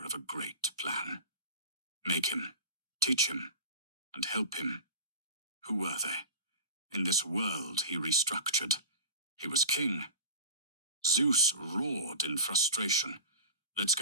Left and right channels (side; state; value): both; inverted; correlation -0.32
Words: a great plan. Make him, teach him, and help him. Who were they? In this world he restructured. He was king. Zeus roared in frustration. Let's